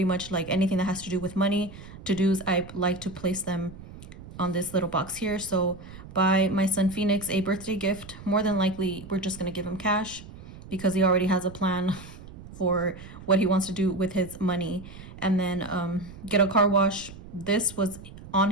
much like anything that has to do with money. To-dos, I like to place them on this little box here. So buy my son Phoenix a birthday gift. More than likely, we're just going to give him cash because he already has a plan for what he wants to do with his money. And then get a car wash. This was on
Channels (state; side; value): noise; right; rumble, 16 dB below the sound